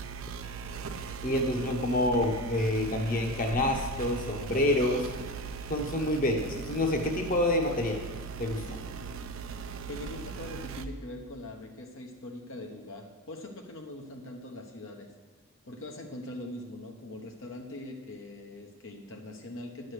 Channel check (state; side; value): normal; both; correlation 0.26